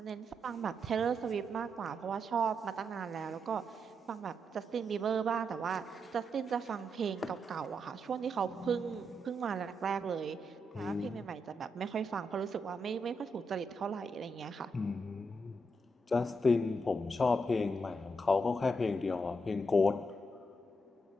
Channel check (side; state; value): both; normal; correlation 0.81